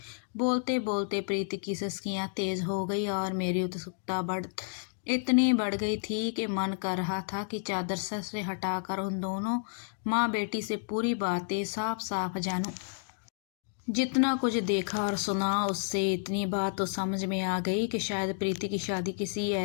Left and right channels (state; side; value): silent; right; digital silence